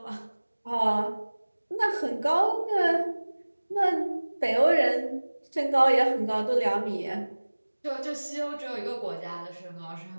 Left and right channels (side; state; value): both; inverted; correlation -1.00